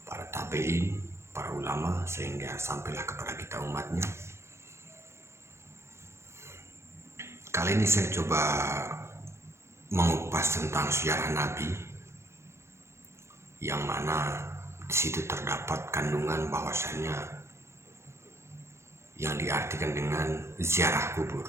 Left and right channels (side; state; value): left; late; 0.13 ms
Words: para tabi'in, para ulama, sehingga sampailah kepada kita umatnya. Kali ini saya coba mengupas tentang sejarah Nabi, yang mana di situ terdapat kandungan bahwasannya yang diartikan dengan ziarah kubur.